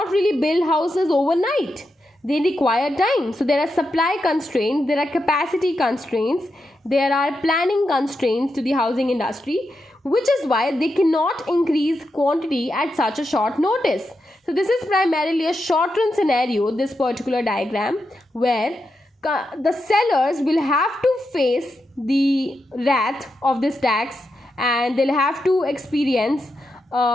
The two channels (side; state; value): both; normal; correlation 0.86